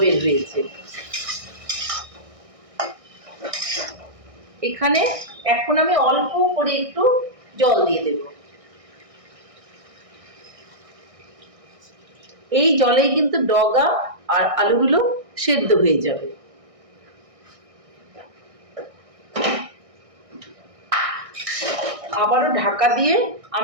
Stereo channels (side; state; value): left; late; 1.6 ms